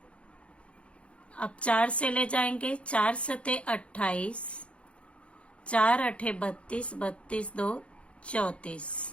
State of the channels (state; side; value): late; right; 0.060 ms